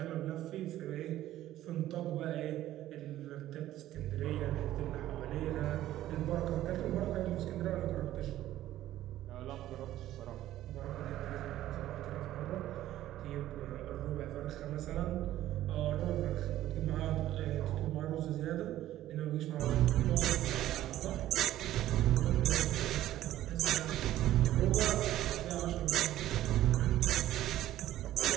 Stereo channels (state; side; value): quieter; left; 13.8 dB